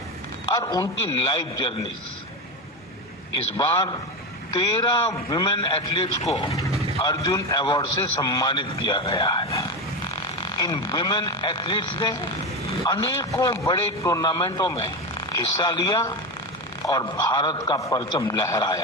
और उनकी लाइफ जर्नीज। इस बार 13 विमेन एथलीट्स को अर्जुन अवार्ड से सम्मानित किया गया है। इन विमेन एथलीट्स ने अनेकों बड़े टूर्नामेंटों में हिस्सा लिया और भारत का परचम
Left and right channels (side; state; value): both; normal; correlation 0.19